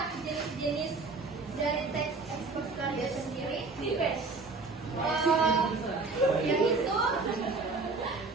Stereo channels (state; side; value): quieter; left; 3.9 dB